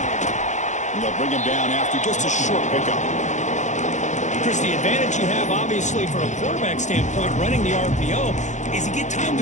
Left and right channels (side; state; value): right; late; 0.35 ms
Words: And they'll bring him down after just a short pickup. Chris, the advantage you have, obviously, from a quarterback standpoint, running the RPO, is you get time